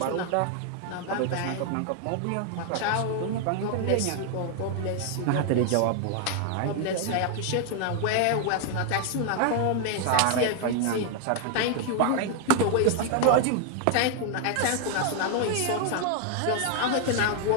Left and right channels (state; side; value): different; both; correlation 0.00